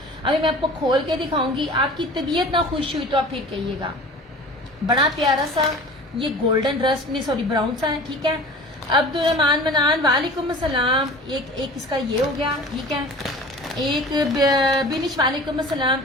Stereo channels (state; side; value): normal; both; correlation 0.41